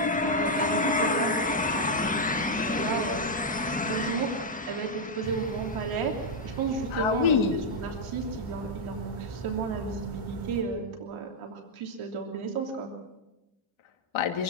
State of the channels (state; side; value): normal; both; correlation -0.02